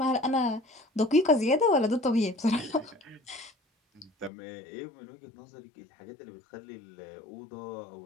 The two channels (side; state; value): right; drops out; at 4.3 s